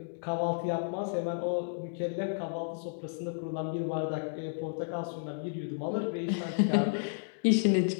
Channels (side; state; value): right; silent; digital silence